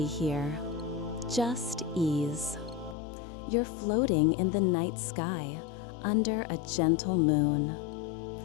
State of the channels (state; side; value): drops out; right; at 3.0 s